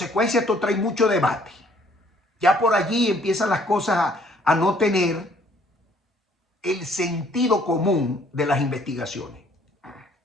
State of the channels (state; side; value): normal; both; correlation 0.61